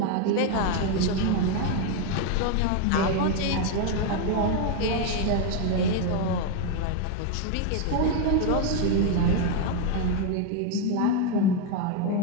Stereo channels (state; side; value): different; both; correlation 0.01